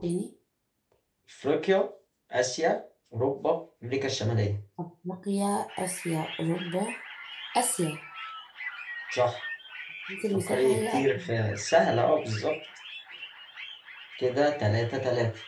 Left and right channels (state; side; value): identical; both; correlation 1.00